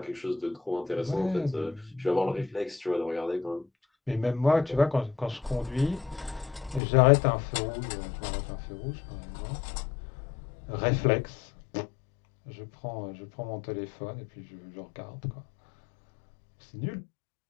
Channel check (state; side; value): drops out; right; at 6.8 s